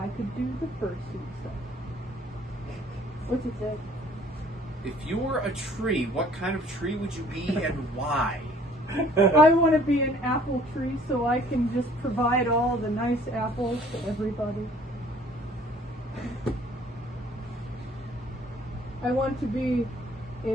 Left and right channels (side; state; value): both; normal; correlation 0.55